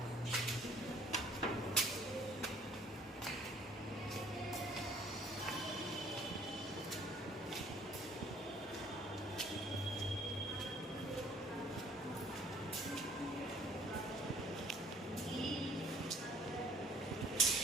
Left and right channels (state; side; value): normal; both; correlation 0.58